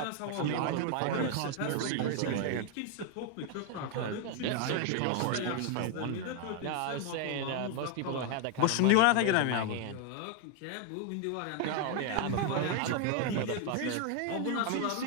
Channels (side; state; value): both; different; correlation 0.01